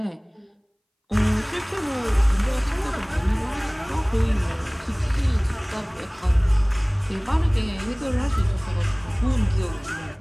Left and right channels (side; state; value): both; identical; correlation 1.00